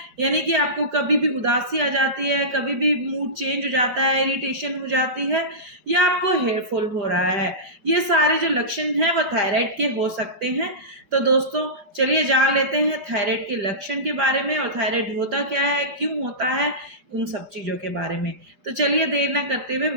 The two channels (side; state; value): left; late; 5.0 ms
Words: यानी कि आपको कभी भी उदासी आ जाती है, कभी भी मूड चेंज हो जाता है, इरिटेशन हो जाती है, या आपको हेयर फॉल हो रहा है? ये सारे जो लक्षण हैं वो थायराइड के हो सकते हैं। तो दोस्तों, चलिए जान लेते हैं थायराइड के लक्षण के बारे में, और थायराइड होता क्या है, क्यों होता है, उन सब चीजों के बारे में। तो चलिए देर ना करते हुए